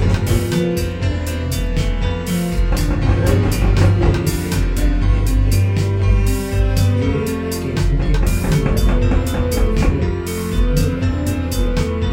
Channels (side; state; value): both; identical; correlation 1.00